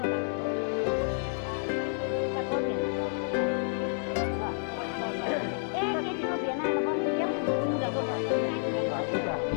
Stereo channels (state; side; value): silent; right; 58 dB below the other